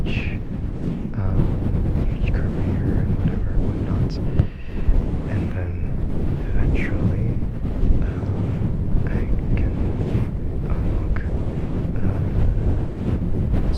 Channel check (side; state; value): both; identical; correlation 1.00